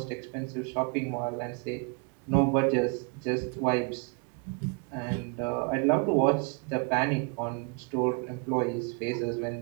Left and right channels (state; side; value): quieter; left; 35.0 dB